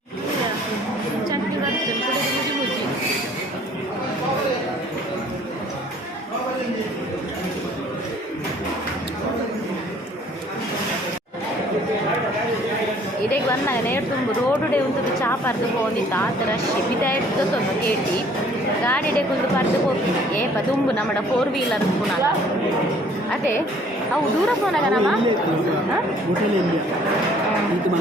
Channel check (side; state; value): both; normal; correlation 0.56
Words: ಚಟ್ನಿ ಬರ್ತದೆ ಮುಜಿ ಮುಜಿ ಇದಕ್ಕೆ ಬಂದಾಗ ನೇರು ತುಂಬ ರೋಡುಡೆ ಒಂದು ಚಾ ಪರ್ದು ಹೋಗಿದ್ದ ಆ ಥರ ಬಿದ ಇರ್ತದೊಂದು ಕೇಟಿ ಗಾಡಿಡೆ ಕುಂದು ಪರ್ದು ಹೋಗ್ತೀನಿ ಏಪ ತುಂಬು ನಮ್ಮಡ 4 ವೀಲರ್ ಪುನಃ ಅದೇ ಅವು ದೂರ ಪೋನಾಗ ನಮ್ಮ